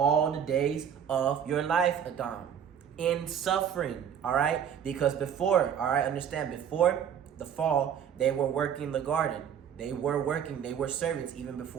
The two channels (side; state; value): left; quieter; 8.6 dB